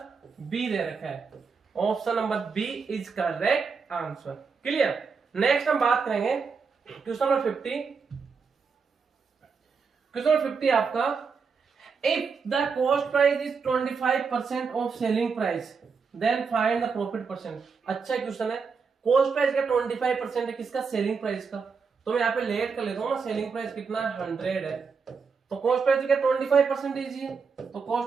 बी दे रखा है। Option number B is correct answer. Clear. Next हम बात करेंगे क्वेश्चन नंबर 50। क्वेश्चन नंबर 50 आपका, if the cost price is 25% of selling price then find the profit percent. अच्छा क्वेश्चन है। कॉस्ट प्राइस का 25% है, किसका? सेलिंग प्राइस का। तो मैं यहाँ पे लेट कर लेता हूँ ना, सेलिंग प्राइस कितना है? 100 है, तो कॉस्ट प्राइस का 25% ही है, तो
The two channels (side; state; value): left; quieter; 5.4 dB